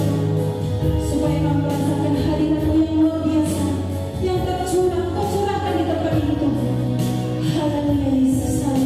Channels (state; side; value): identical; both; correlation 1.00